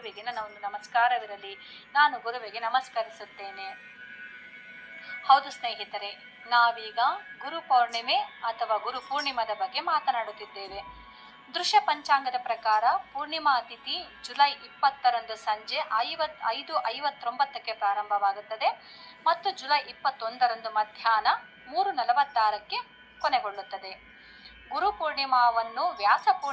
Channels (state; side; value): identical; both; correlation 1.00